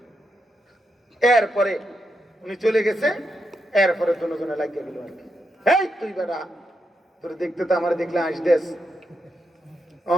এরপরে উনি চলে গেছে, এরপরে দুজনে লাগিয়ে গেল আর কি, এই তুই বেটা, তোর দেখতে তো আমার দেখলে আসদেস,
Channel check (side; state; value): both; normal; correlation 0.84